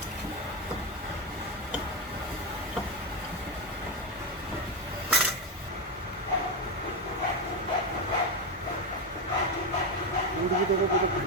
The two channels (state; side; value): normal; both; correlation 0.09